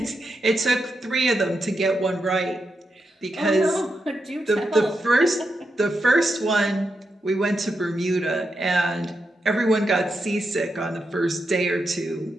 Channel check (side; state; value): both; normal; correlation 0.85